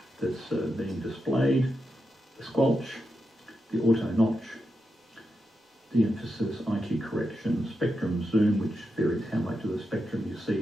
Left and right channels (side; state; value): both; normal; correlation 0.87